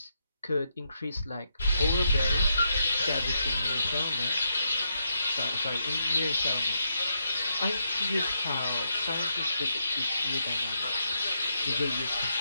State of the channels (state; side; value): inverted; both; correlation -0.80